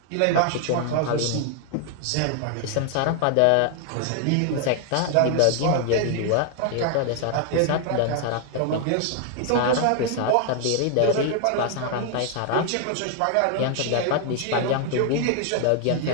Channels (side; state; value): both; different; correlation 0.00